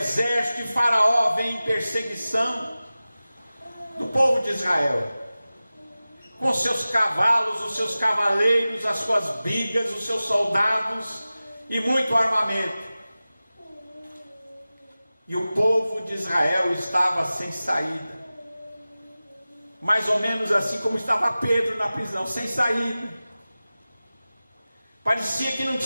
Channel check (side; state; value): both; inverted; correlation -0.96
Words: de Faraó vem em perseguição do povo de Israel, com seus cavalos, os seus cavaleiros, as suas bigas, os seus soldados e muito armamento. E o povo de Israel estava sem saída, mais ou menos assim como estava Pedro na prisão, sem saída. Parecia que não